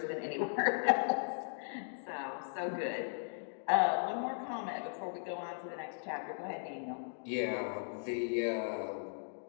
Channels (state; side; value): silent; right; digital silence